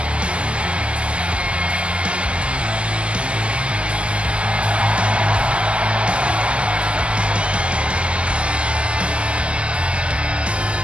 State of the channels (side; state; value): left; late; 0.054 ms